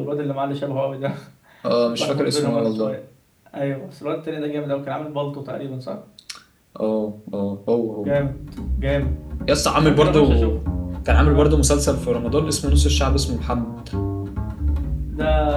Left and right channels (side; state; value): both; identical; correlation 1.00